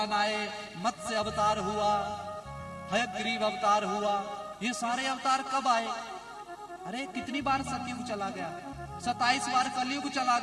आए, मत्स्य अवतार हुआ, हयग्रीव अवतार हुआ, ये सारे अवतार कब आए? अरे कितनी बार सतयुग चला गया? 27 बार कलयुग चला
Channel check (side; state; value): both; identical; correlation 1.00